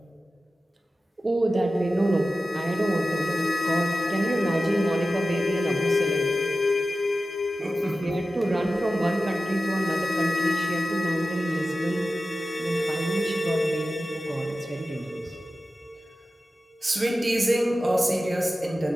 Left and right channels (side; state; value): both; normal; correlation 0.94